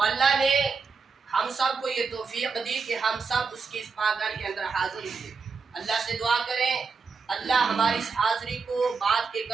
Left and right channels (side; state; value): left; quieter; 4.9 dB